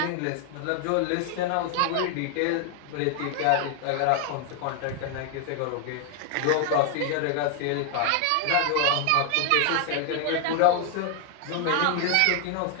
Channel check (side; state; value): both; different; correlation 0.00